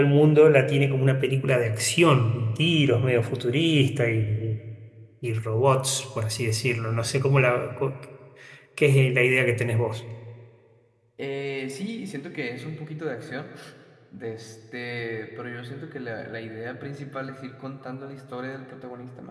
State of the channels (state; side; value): identical; both; correlation 1.00